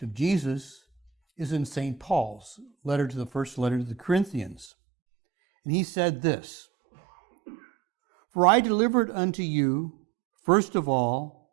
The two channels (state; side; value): drops out; left; at 4.7 s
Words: of Jesus is in St. Paul's letter to the first letter to the Corinthians. And he said this, "For I delivered unto you, first of